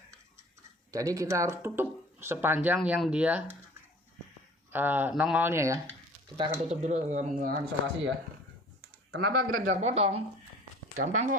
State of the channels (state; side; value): normal; both; correlation 0.47